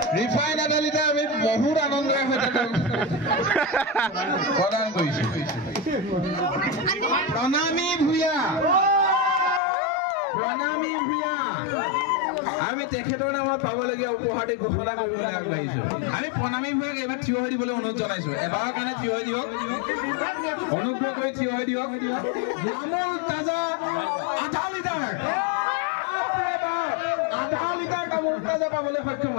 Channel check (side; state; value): right; drops out; at 9.6 s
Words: ৰিফাইন আদালিতে আমি বহুত আনন্দৰে সৈতে প্ৰদান কৰিছো প্ৰণামী ভূঞা আমি তেখেতৰ নামত পাবলগীয়া উপহাৰটি ঘোষণা কৰিবলৈ আগবাঢ়িছো আমি প্ৰণামী ভূঞাক এইবাৰ থিয় হৈ দিবলৈ অনুৰোধ জনাইছো এবাৰৰ কাৰণে থিয় হৈ দিয়ক অনুগ্ৰহ কৰি থিয় হৈ দিয়ক আমুল তাজা আধা লিটাৰ আমুল তাজা পাবলৈ সক্ষম